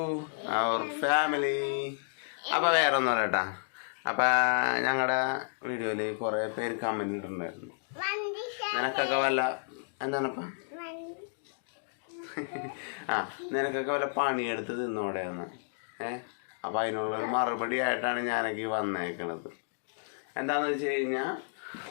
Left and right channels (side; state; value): right; silent; digital silence